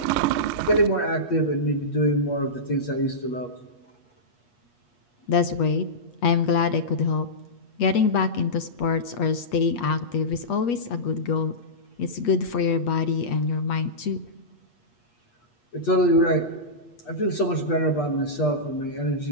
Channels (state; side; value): late; right; 8.4 ms